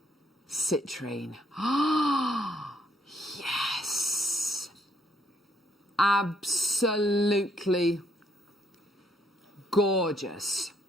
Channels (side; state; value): both; normal; correlation 0.70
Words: citrine. Ah, yes. Absolutely gorgeous.